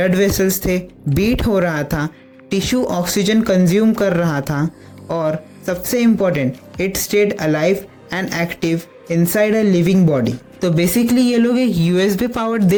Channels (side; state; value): both; identical; correlation 1.00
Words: वेसल्स थे, बीट हो रहा था, टिश्यू ऑक्सीजन कंज्यूम कर रहा था, और सबसे important, it stayed alive and active inside a living body. तो बेसिकली ये लोग एक USB पावर्ड